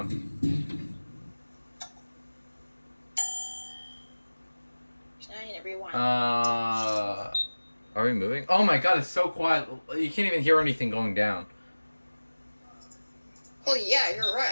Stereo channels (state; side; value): inverted; both; correlation -1.00